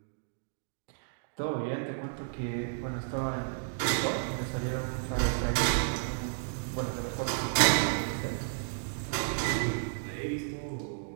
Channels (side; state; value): left; silent; digital silence